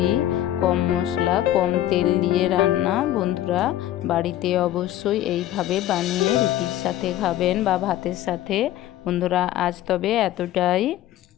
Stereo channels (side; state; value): right; quieter; 13.2 dB